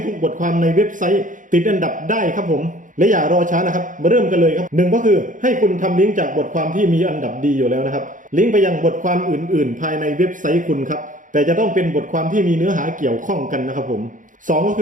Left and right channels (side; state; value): left; late; 0.38 ms